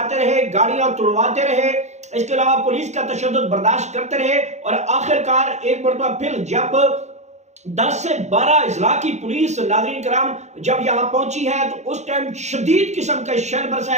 رہے، گاڑیاں توڑواتے رہے، اس کے علاوہ پولیس کا تشدد برداشت کرتے رہے، اور آخرکار ایک مرتبہ پھر جب 10 سے 12 اضلاع کی پولیس ناظرین کرام جب یہاں پہنچی ہے تو اس ٹائم شدید قسم کا شیل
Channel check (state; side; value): late; left; 0.33 ms